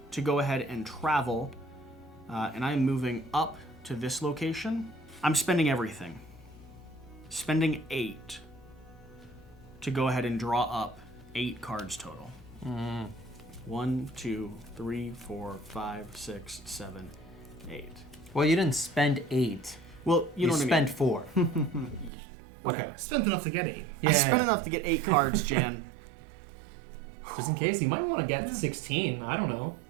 to go ahead and travel, and I'm moving up to this location. I'm spending everything. Spending 8 to go ahead and draw up 8 cards total. 1, 2, 3, 4, 5, 6, 7, 8. Well, you didn't spend 8. Well, you know what I spent mean. 4. Okay. Spent enough to get 8. I spent enough to get 8 cards, Jan. Just in case, you might want to get 16. I don't know.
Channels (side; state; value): left; drops out; at 22.1 s